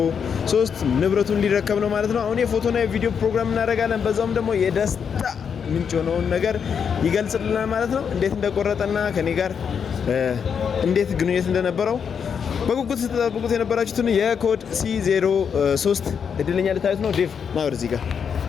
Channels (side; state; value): right; quieter; 7.0 dB